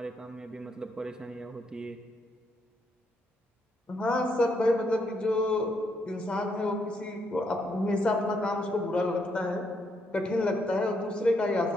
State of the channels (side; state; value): both; normal; correlation 0.76